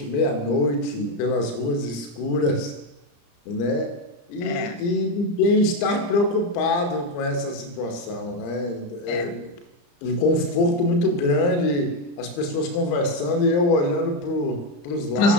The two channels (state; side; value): late; right; 34 ms